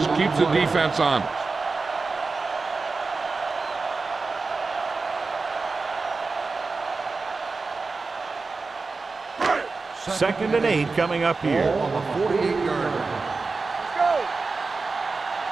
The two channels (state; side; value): quieter; left; 4.1 dB